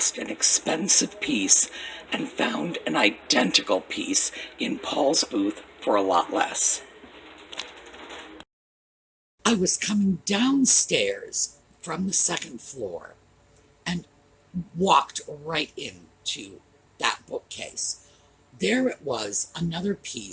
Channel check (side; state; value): both; identical; correlation 1.00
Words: an expensive piece and found an identical piece in Paul's booth for a lot less. I was coming downstairs from the second floor and walked right into that bookcase. There it was, another